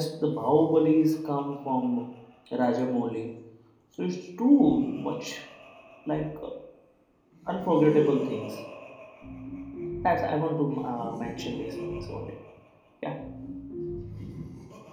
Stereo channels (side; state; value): both; identical; correlation 1.00